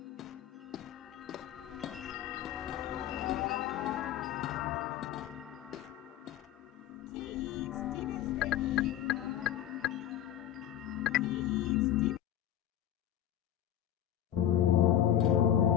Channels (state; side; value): quieter; right; 11.3 dB